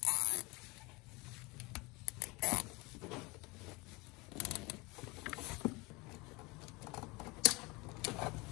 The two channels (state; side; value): quieter; right; 25.1 dB